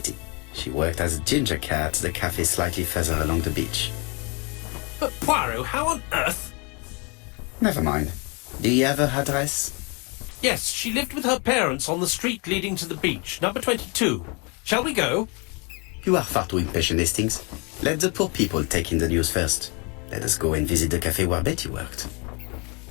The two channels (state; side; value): quieter; right; 31.6 dB